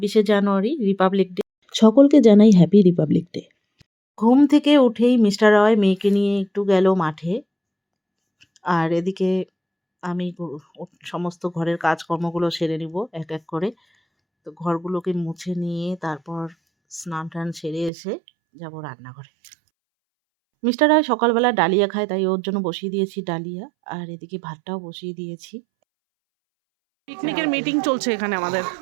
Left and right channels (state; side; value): drops out; left; at 17.9 s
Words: জানুয়ারি, Republic day. সকলকে জানাই হ্যাপি রিপাবলিক ডে। ঘুম থেকে উঠেই মিস্টার রয় মেয়েকে নিয়ে একটু গেল মাঠে। আর এদিকে আমি সমস্ত ঘরের কাজকর্মগুলো সেরে নিব এক এক করে। তো ঘরগুলোকে মুছে নিয়ে তারপর স্নান টান সেরে এসে যাব রান্নাঘরে। মিস্টার রয় সকালবেলা ডালিয়া খায়, তাই ওর জন্য বসিয়ে দিয়েছি ডালিয়া। আর এদিকে ভাতটাও বসিয়ে দিয়েছি। পিকনিকের মিটিং চলছে এখানে আমাদের।